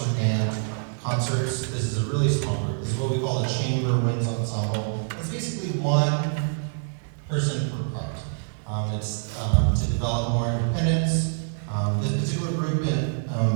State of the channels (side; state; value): left; silent; digital silence